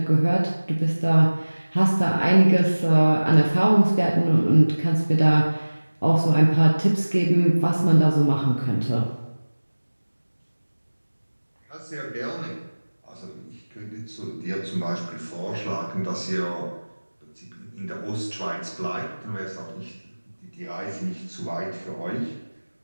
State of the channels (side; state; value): both; inverted; correlation -1.00